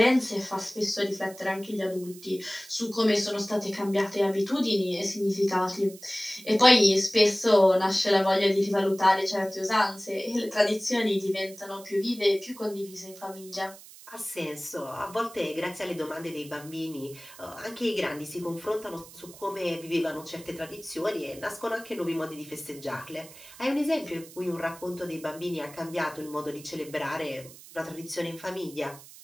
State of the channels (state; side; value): noise; right; hiss, 19 dB below the sound